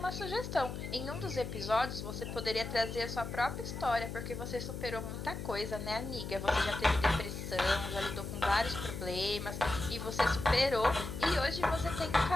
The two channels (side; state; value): left; noise; hum, 7 dB below the sound